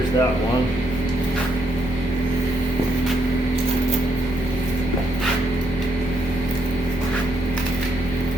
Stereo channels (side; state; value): both; normal; correlation 0.76